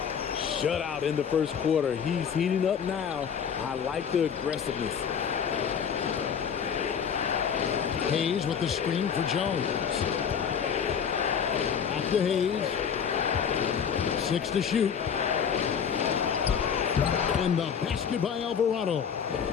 Shutout in the first quarter. He's heating up now. I like the aggressiveness. Hayes with the screen for Jones. Back to Hayes. 6 to shoot. And the basket by Alvarado.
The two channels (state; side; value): quieter; right; 7.3 dB